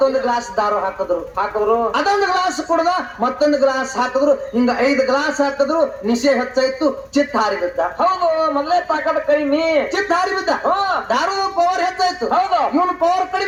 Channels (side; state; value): both; identical; correlation 1.00